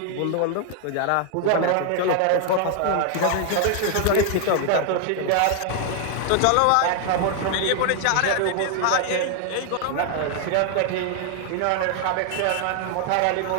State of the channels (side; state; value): both; different; correlation 0.00